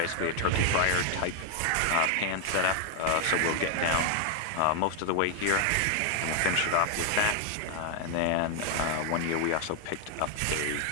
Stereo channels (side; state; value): both; different; correlation 0.00